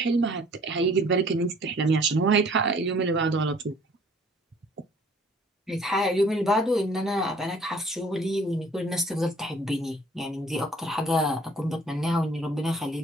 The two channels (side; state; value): both; normal; correlation 0.56